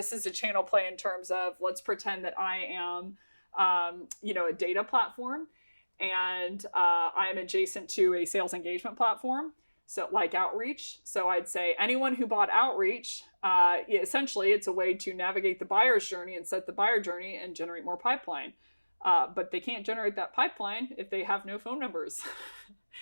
is a channel play in terms of, let's pretend that I am, a data platform, and I'm adjacent to a sales engagement platform. So like Outreach. So I'd say anyone who bought Outreach, essentially it's a way to navigate the buyer's journey and set the buyer journey and generate more pipeline. But they can't generate that pipeline if they have no phone numbers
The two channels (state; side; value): inverted; both; correlation -1.00